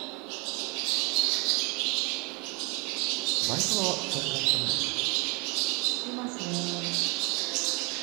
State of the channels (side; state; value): left; quieter; 29.8 dB